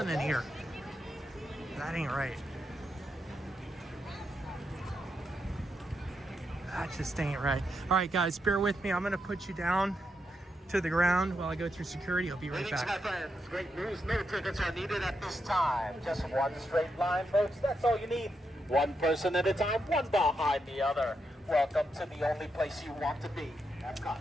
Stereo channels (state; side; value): normal; both; correlation 0.83